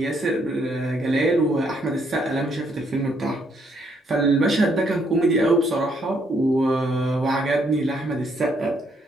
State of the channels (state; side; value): normal; both; correlation 0.71